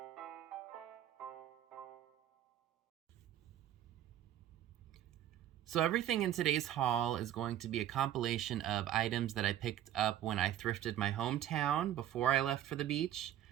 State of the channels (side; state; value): left; quieter; 11.8 dB